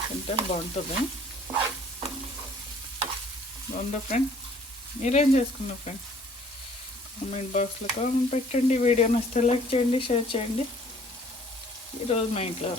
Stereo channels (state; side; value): normal; both; correlation 0.56